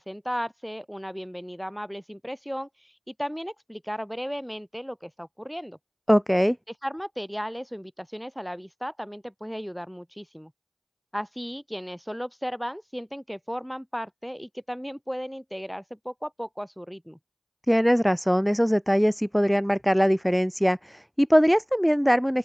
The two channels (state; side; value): identical; both; correlation 1.00